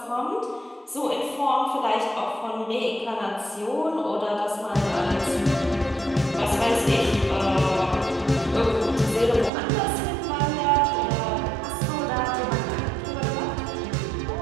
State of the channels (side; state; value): left; drops out; at 9.5 s